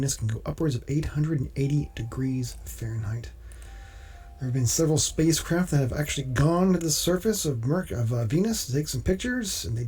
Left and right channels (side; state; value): both; identical; correlation 1.00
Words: can go upwards of 880 degrees Fahrenheit. There have been several spacecraft that have actually gone to the surface of Venus to take some pictures, and they